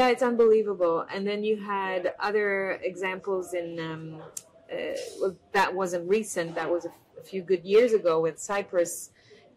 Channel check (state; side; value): identical; both; correlation 1.00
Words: it's unbelievable. And then you had other examples in, that wasn't recent. That was a few good years ago with Cyprus